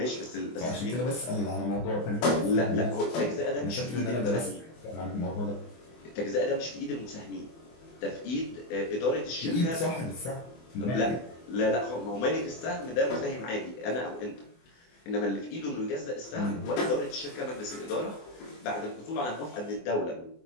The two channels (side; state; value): right; late; 24 ms